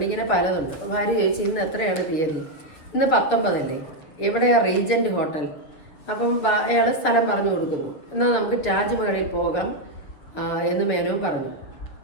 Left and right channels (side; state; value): right; late; 7.1 ms